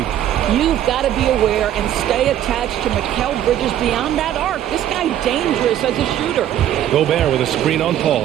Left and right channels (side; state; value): left; quieter; 11.4 dB